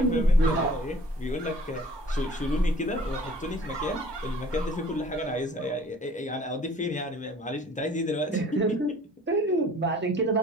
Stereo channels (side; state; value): both; normal; correlation 0.51